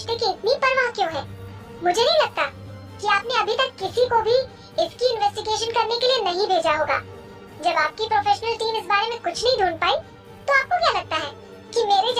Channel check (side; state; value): both; identical; correlation 1.00